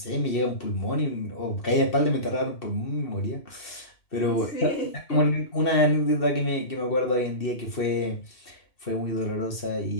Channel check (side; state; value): right; late; 2.7 ms